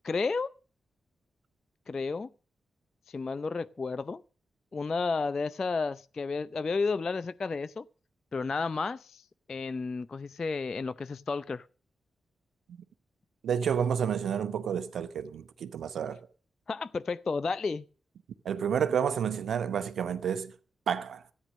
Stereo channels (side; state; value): both; normal; correlation 0.79